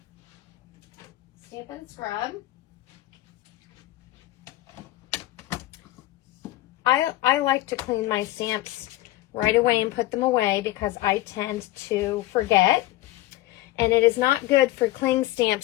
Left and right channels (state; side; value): quieter; right; 16.7 dB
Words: Stamp and Scrub. I like to clean my stamps right away and put them away because I tend to forget. And it is not good for cling